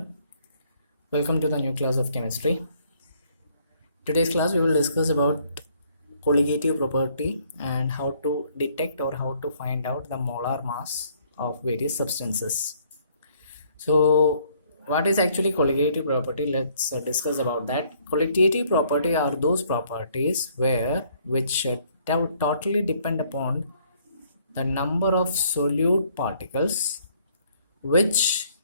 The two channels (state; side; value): inverted; both; correlation -0.64